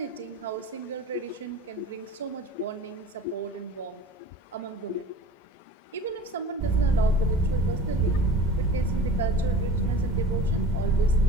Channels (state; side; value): normal; both; correlation 0.40